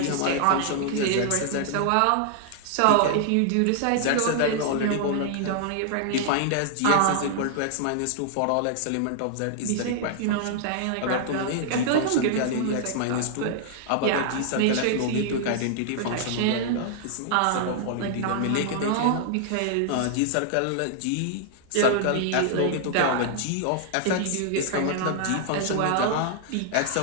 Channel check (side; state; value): both; different; correlation 0.00